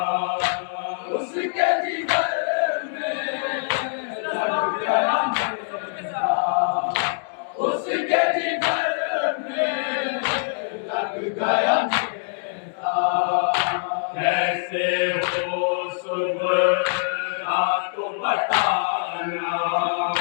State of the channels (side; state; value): right; silent; digital silence